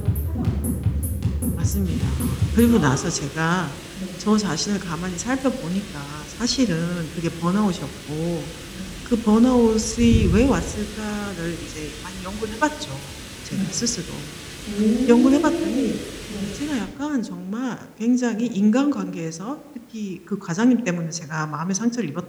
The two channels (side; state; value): both; identical; correlation 1.00